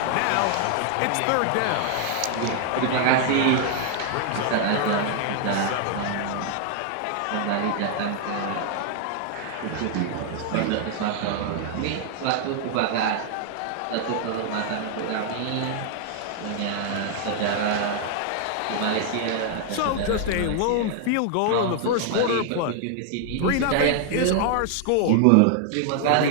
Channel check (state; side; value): different; both; correlation 0.00